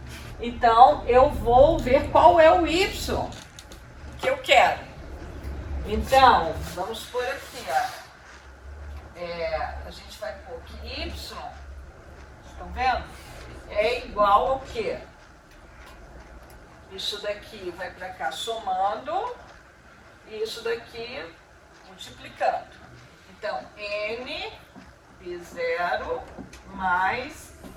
então eu vou ver qual é o Y que eu quero. Então, vamos por aqui, ó. A gente vai pôr que Y, estão vendo? É igual ao quê? Isso daqui vai para cá somando, e isso daqui multiplicando. Então, N P0 mais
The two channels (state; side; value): identical; both; correlation 1.00